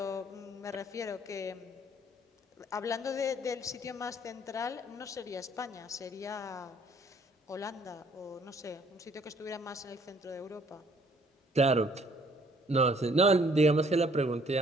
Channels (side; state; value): both; normal; correlation 0.61